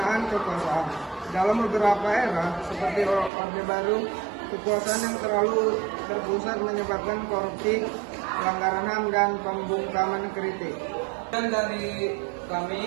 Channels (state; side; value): drops out; left; at 3.3 s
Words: kekuasaan. Dalam beberapa era, seperti Orde Baru, kekuasaan yang terlalu terpusat menyebabkan korupsi, pelanggaran HAM, dan pembungkaman kritik. Dan dari